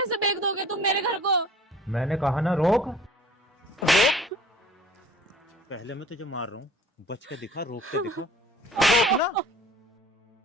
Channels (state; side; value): normal; both; correlation 0.48